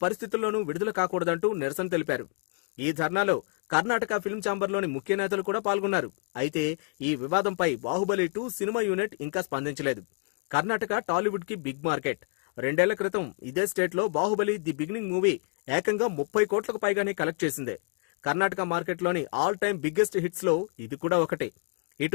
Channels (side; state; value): right; quieter; 37.5 dB